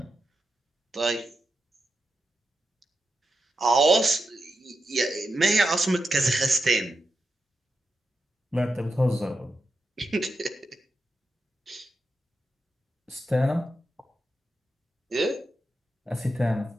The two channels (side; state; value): both; normal; correlation 0.88